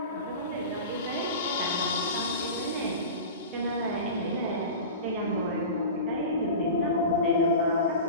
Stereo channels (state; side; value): inverted; both; correlation -0.31